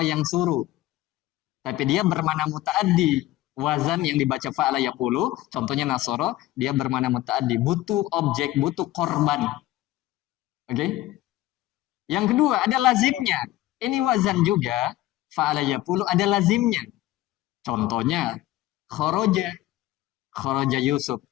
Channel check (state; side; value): quieter; right; 15.7 dB